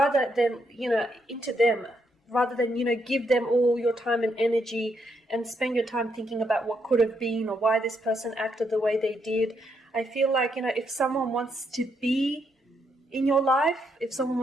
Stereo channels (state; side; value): normal; both; correlation 0.77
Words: than, you know, into them. Rather than, you know, give them all your time and energy and spend your time thinking about what could have been or why this person acted the way they did. I feel like, you know, if someone wants to be in your life, if someone